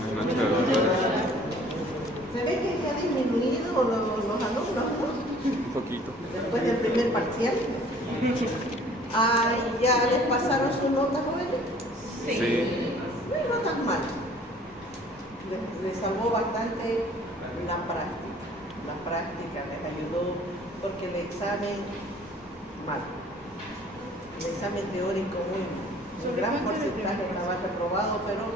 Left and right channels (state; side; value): normal; both; correlation 0.53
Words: noches, doctora. Se ve que ya ha disminuido los alumnos, ¿no? Un poquito. Después del primer parcial. ¿Ya les pasaron sus notas, jóvenes? Sí. No tan mal. Les salvó bastante la práctica. La práctica les ayudó porque el examen, mal. El examen teórico, un gran porcentaje estaba reprobado, pero